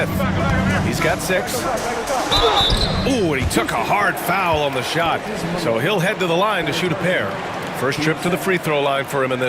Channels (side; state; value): both; identical; correlation 1.00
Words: He's got 6. Ooh, and he took a hard foul on the shot. So he'll head to the line to shoot a pair. First trip to the free throw line for him in